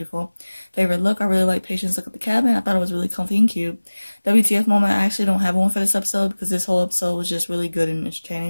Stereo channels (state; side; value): inverted; both; correlation -1.00